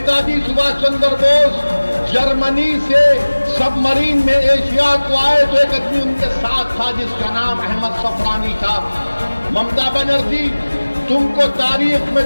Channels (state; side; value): inverted; both; correlation -1.00